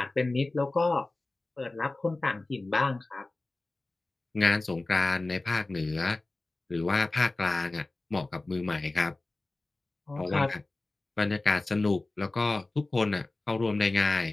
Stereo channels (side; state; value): right; quieter; 3.1 dB